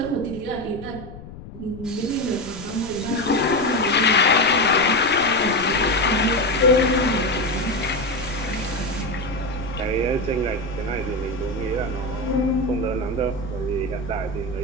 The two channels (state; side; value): noise; left; rumble, 15 dB below the sound